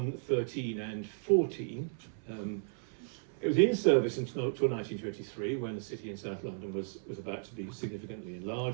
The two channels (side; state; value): left; silent; 55 dB below the other